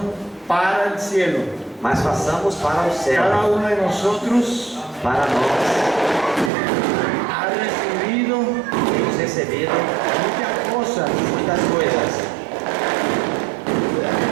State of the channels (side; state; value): left; drops out; at 6.5 s